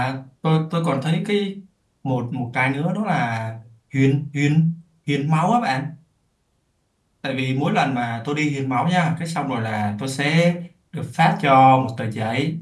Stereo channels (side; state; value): both; identical; correlation 1.00